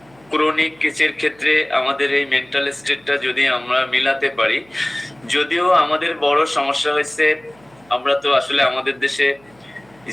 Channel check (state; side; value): noise; right; hum, 30 dB below the sound